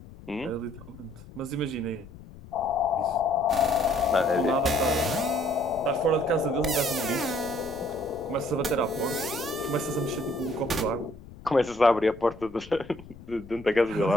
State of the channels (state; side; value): noise; left; rumble, 18 dB below the sound